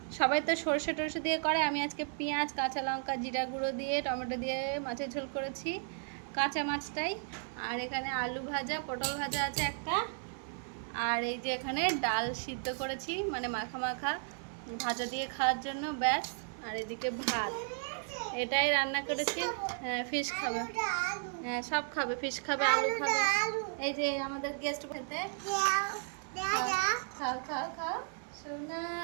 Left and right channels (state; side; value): silent; left; 55 dB below the other